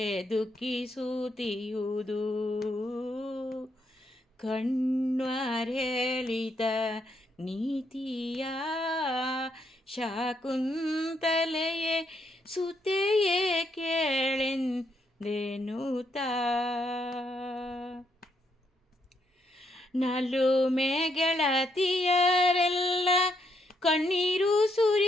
ದುಃಖಿಸುತ್ತಿರುವುದು. ಕಣ್ವರ್ ಹೇಳಿದ ನೀತಿಯ ಶಾಕುಂತಲೆಯೇ ಸುತೆಯೇ ಕೇಳೆಂದೆನುತ. ನಲುಮೆ ಗೆಳತಿಯರೆಲ್ಲ ಕಣ್ಣೀರು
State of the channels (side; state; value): both; normal; correlation 0.76